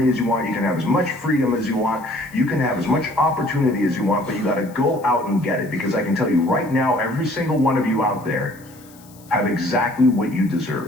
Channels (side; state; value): left; noise; hiss, 25 dB below the sound